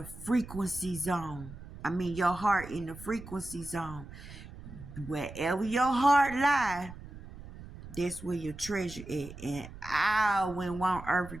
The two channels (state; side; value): noise; right; rumble, 14 dB below the sound